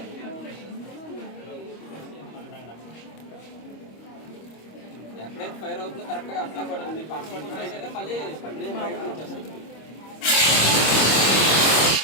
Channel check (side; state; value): right; late; 25 ms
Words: ఎక్కడైతే ఫైర్ అవుతుందో కరెక్ట్గా అట్లా కూడా మీకు పట్టుకుంటున్నా సరే మళ్ళీ బయటకు వచ్చేస్తుంది.